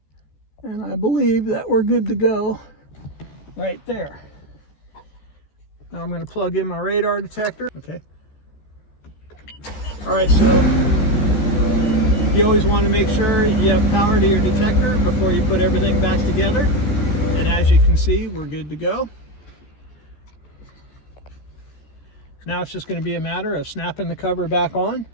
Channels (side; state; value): right; late; 14 ms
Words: And I believe that we're good to go right there. Now I'm going to plug in my radar detector. Okay. All right, so you always want to make sure you have power to your detector before you put everything back together. And as you can see, we're good to go. Now it's just going to be a matter of snapping the cover back on.